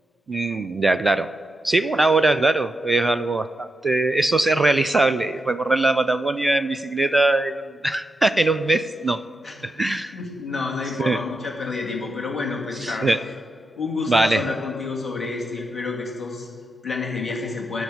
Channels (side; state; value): both; normal; correlation 0.87